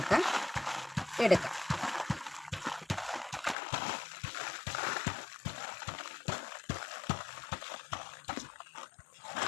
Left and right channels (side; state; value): right; drops out; at 3.6 s